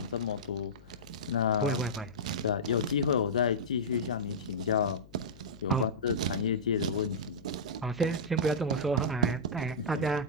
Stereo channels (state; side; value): noise; left; hum, 22 dB below the sound